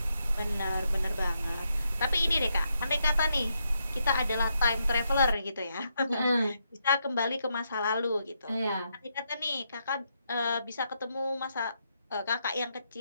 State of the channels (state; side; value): inverted; both; correlation -0.80